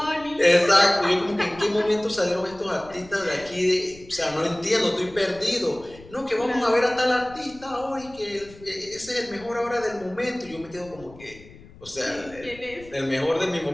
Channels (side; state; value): left; noise; rumble, 21 dB below the sound